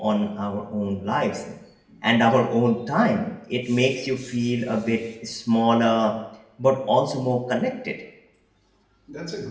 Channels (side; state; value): both; identical; correlation 1.00